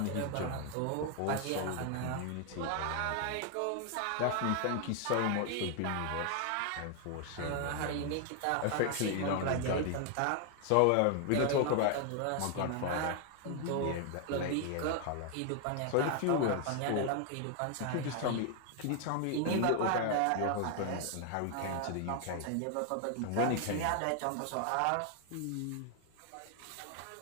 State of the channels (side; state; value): both; different; correlation 0.00